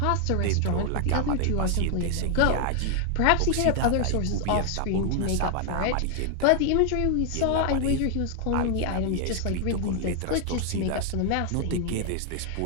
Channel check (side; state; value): both; different; correlation 0.00